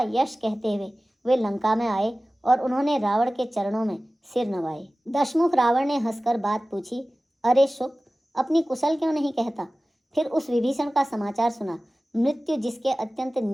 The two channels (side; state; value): both; normal; correlation 0.97